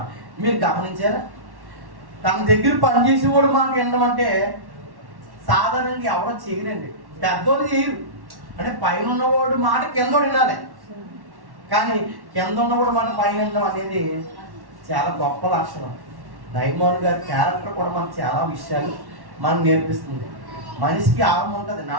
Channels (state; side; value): late; left; 1.1 ms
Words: మీరు గమనించారా? తన దగ్గర పనిచేసేవాడు మాట వినమంటే సాధారణంగా ఎవరో చేయరండి, పెద్దోళ్ళు చేయరు. అంటే పైన ఉన్నవాడు మాట కింద వినాలి, కానీ కింద ఉన్నవాడు మాట పైన వినడం అనేది చాలా గొప్ప లక్షణం. నయమాను గారి క్యారెక్టర్ కూడా మనకు చాలా విషయాలు మనకు నేర్పిస్తుంది. మనిషికి ఆహం ఉంటుంది,